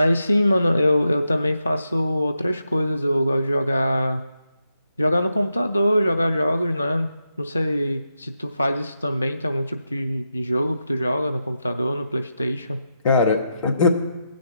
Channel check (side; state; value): both; inverted; correlation -0.85